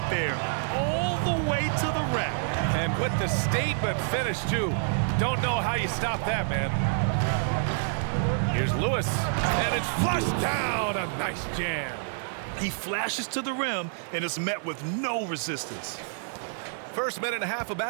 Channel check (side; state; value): left; silent; 59 dB below the other